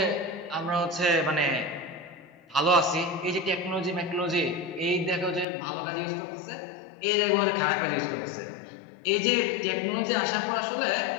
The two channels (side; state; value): right; drops out; at 5.5 s